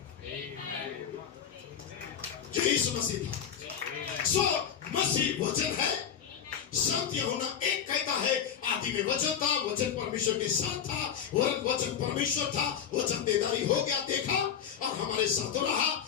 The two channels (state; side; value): quieter; right; 8.3 dB